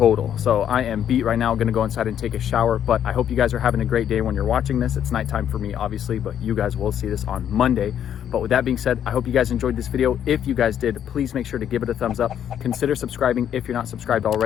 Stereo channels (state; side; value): quieter; right; 9.6 dB